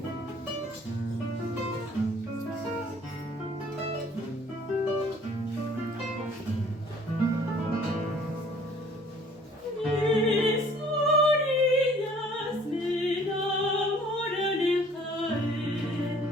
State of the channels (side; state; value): both; normal; correlation 0.55